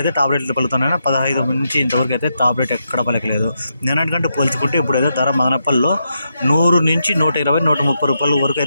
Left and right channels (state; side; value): inverted; both; correlation -0.83